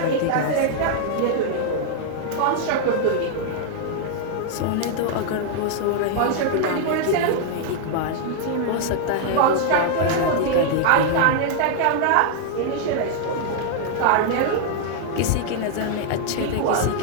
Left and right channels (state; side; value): different; both; correlation -0.01